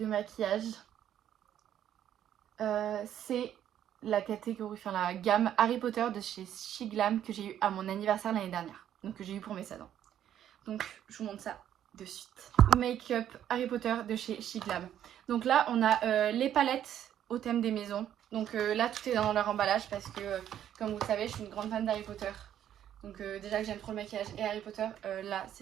maquillage. C'est la catégorie, enfin la gamme Harry Potter de chez She Glam que j'ai eu à mon anniversaire l'année dernière. Donc que j'ai eu pour mes 16 ans. Donc je vous montre ça de suite. Make-up Harry Potter de chez She Glam. Donc là on a les palettes au thème des maisons. Donc là tout est dans leur emballage parce que comme vous le savez je suis une grande fan d'Harry Potter. Donc déjà que j'aime trop le maquillage et Harry Potter, là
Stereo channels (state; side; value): quieter; left; 10.6 dB